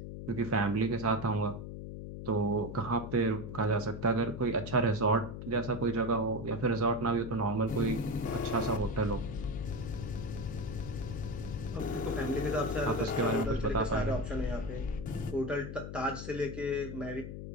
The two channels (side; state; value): left; noise; hum, 8 dB below the sound